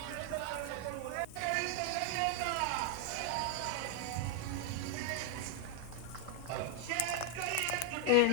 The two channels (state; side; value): different; both; correlation 0.00